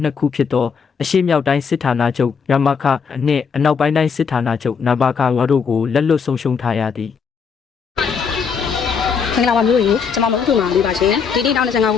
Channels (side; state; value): right; quieter; 6.0 dB